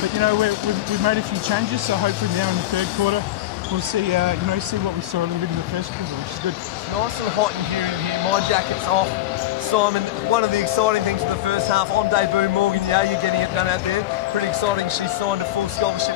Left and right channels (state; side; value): quieter; right; 14.1 dB